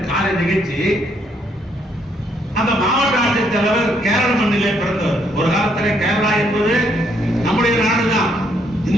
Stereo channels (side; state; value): both; normal; correlation 0.72